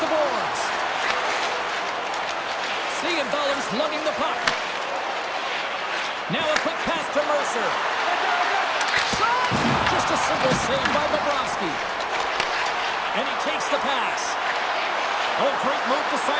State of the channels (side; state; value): both; identical; correlation 1.00